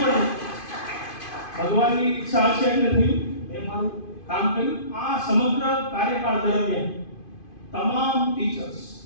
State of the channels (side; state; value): right; late; 2.5 ms